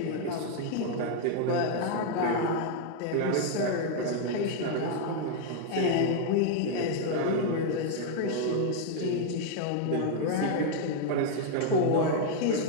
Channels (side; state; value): both; different; correlation 0.00